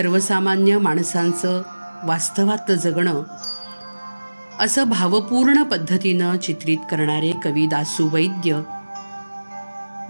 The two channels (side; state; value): both; inverted; correlation -1.00